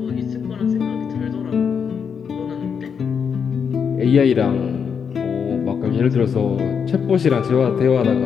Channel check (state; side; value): quieter; right; 6.8 dB